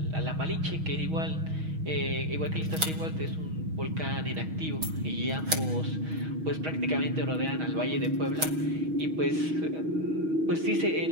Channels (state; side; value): late; left; 6.3 ms